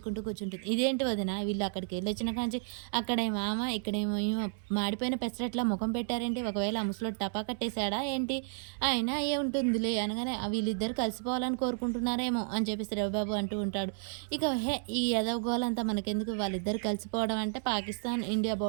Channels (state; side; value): silent; left; 56 dB below the other